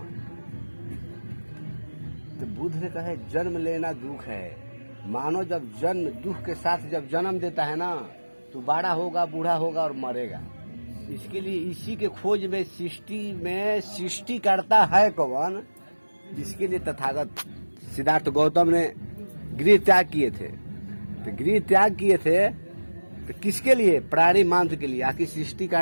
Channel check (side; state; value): both; inverted; correlation -1.00